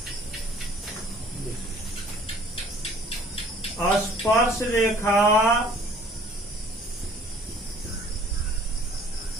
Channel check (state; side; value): normal; both; correlation 0.55